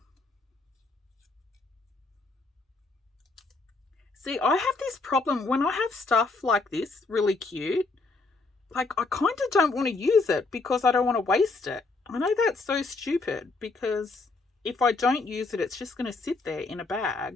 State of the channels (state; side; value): quieter; right; 3.6 dB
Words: See, I have this problem when I have stuff like this, really cute. Like, I kind of don't want to use it because I don't want to waste it. I know that's so stupid, because if I don't use it, it's just going to sit there in a